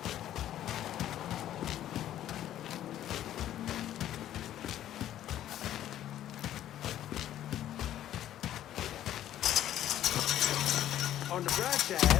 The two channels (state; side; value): quieter; right; 12.1 dB